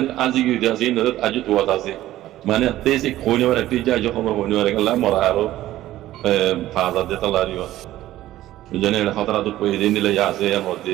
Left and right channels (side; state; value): left; quieter; 14.6 dB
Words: আজি গিয়ে আছে আজি তোয়াত আছে মানে তে সে খোনিবার একটি যা খবর খোনিবার গেল মরা আরো 5000 দিতে লারিও জানে খতরা দুপাইতে নিলে আছে মসজিদে